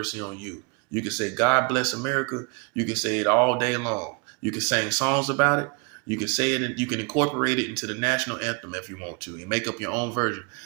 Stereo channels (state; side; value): quieter; left; 31.7 dB